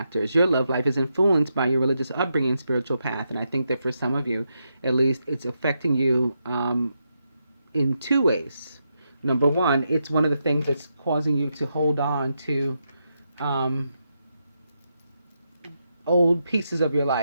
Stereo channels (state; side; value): inverted; both; correlation -0.83